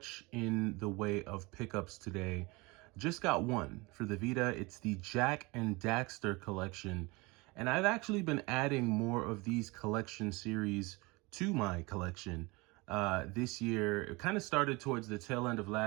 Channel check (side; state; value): left; quieter; 24.9 dB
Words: in the way of pickups today. Just got one for the Vita. It's the Jak and Daxter collection. And I've actually been adding more of these collection series to my collection this year. It kind of started towards the tail end of